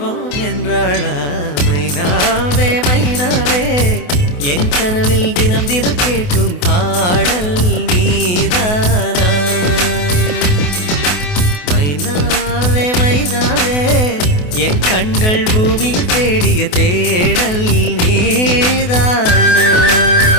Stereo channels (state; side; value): late; right; 28 ms